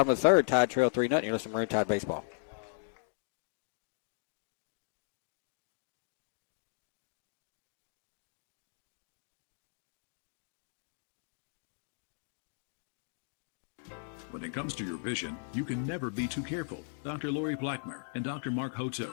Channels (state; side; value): silent; right; digital silence